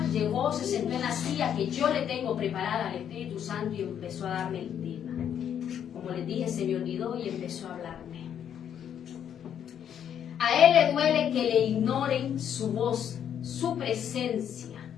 llegó, se sentó en la silla que yo le tengo preparada al Espíritu Santo y empezó a darme el tema. Como les dije, se me olvidó y empezó a hablarme. A él le duele que le ignoren su voz, su presencia.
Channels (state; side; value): quieter; right; 9.1 dB